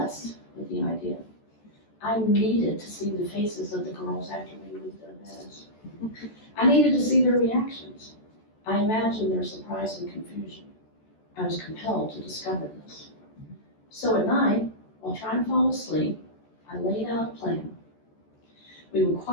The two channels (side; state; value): right; late; 14 ms